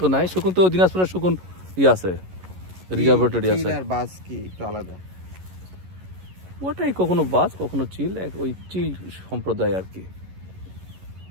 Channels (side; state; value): left; late; 11 ms